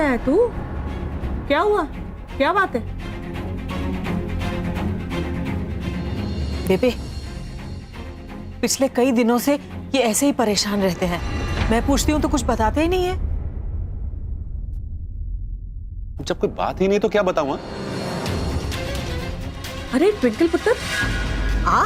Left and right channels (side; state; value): both; identical; correlation 1.00